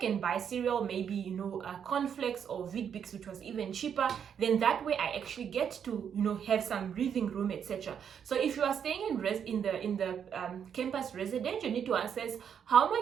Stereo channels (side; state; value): left; quieter; 8.0 dB